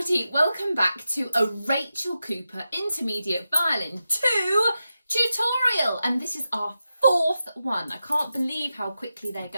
welcome back to a Rachel Cooper Intermediate Violin 2 tutorial, and this is our fourth one. I can't believe how quickly they're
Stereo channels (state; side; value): inverted; both; correlation -0.90